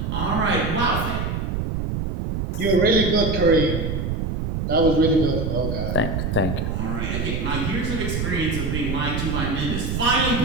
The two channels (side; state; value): right; noise; rumble, 1 dB below the sound